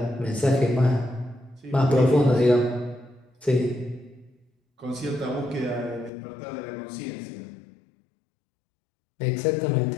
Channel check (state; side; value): drops out; right; at 6.1 s